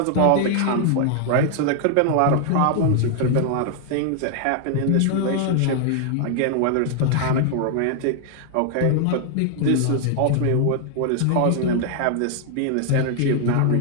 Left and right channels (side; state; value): both; different; correlation 0.00